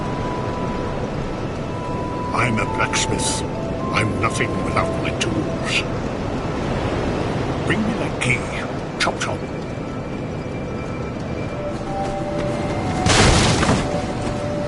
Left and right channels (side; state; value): both; identical; correlation 1.00